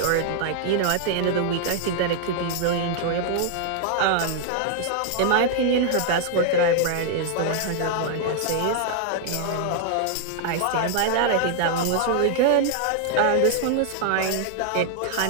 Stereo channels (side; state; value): both; different; correlation 0.00